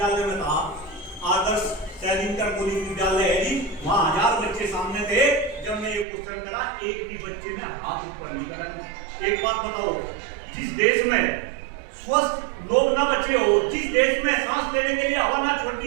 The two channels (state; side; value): drops out; left; at 6.1 s